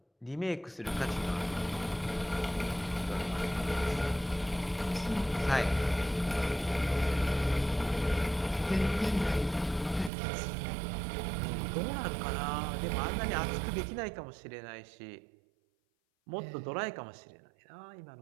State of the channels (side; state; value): left; drops out; at 10.1 s